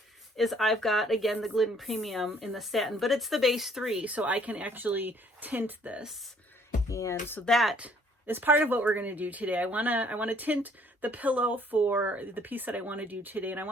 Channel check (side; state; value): both; normal; correlation 0.61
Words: is I've got, again, the Glidden Premium in the satin, but it's the base 3, so I can actually tint this. And so that is part of what we're going to do today. I want to tint the pillow for the piece that I want to do today, and I